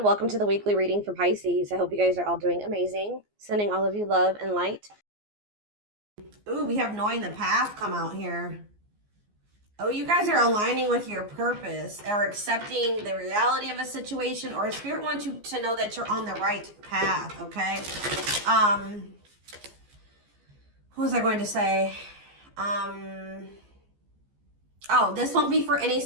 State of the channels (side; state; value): left; late; 14 ms